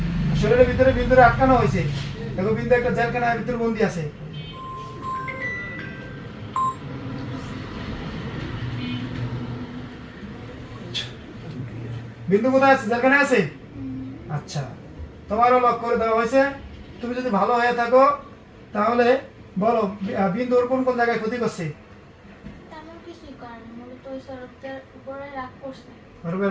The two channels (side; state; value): both; identical; correlation 1.00